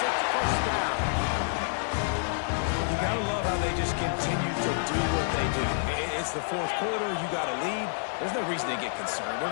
It's first down. You got to love how they just continue to do what they do. It's the fourth quarter. You got a lead. There's no reason to get concerned.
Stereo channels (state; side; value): silent; right; digital silence